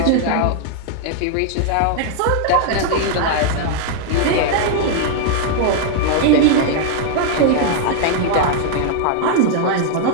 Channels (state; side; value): different; both; correlation 0.00